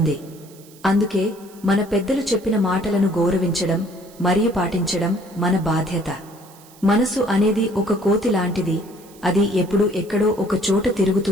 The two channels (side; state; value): right; noise; hiss, 24 dB below the sound